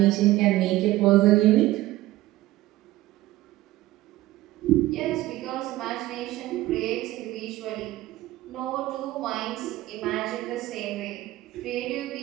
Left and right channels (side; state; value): left; quieter; 16.5 dB